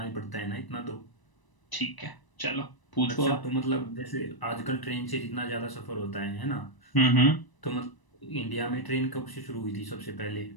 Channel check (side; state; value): right; late; 1.0 ms